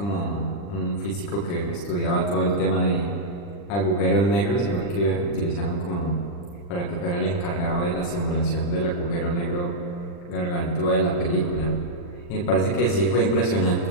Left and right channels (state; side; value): late; right; 40 ms